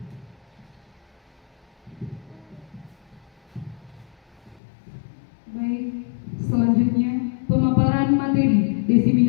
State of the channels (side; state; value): right; drops out; at 4.6 s